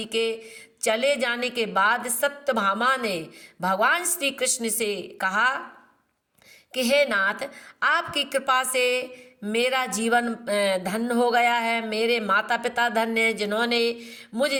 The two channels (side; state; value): both; identical; correlation 1.00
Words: के चले जाने के बाद सत्यभामा ने भगवान श्री कृष्ण से कहा कि हे नाथ, आपकी कृपा से मेरा जीवन धन्य हो गया है। मेरे माता पिता धन्य हैं, जिन्होंने मुझ